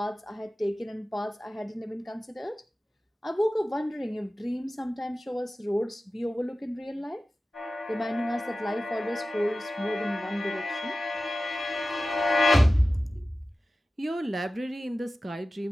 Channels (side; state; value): both; normal; correlation 0.95